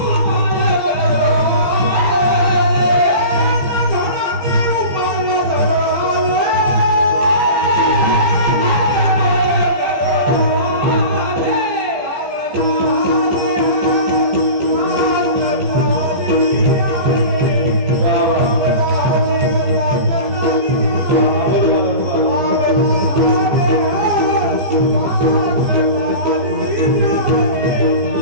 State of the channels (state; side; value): late; left; 15 ms